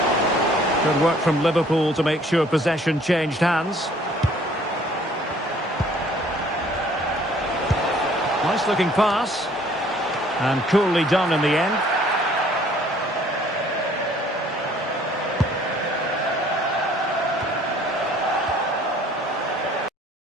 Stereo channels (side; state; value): both; normal; correlation 0.57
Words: Good work from Liverpool to make sure possession changed hands. Nice looking pass. And coolly done in the end.